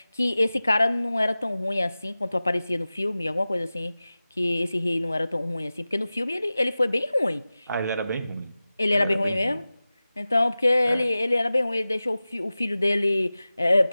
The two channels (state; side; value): inverted; both; correlation -0.96